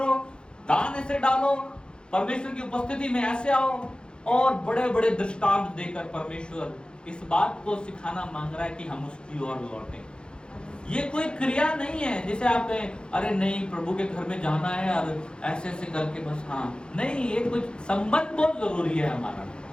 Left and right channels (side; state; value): right; late; 0.051 ms